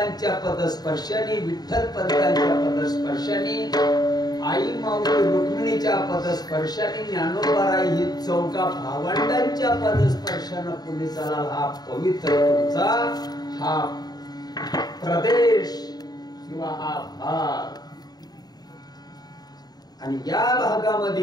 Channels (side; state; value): right; late; 0.19 ms